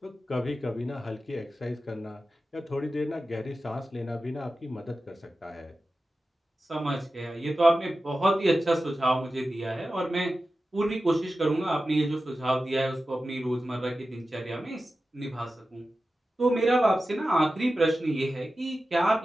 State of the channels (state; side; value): normal; both; correlation 0.94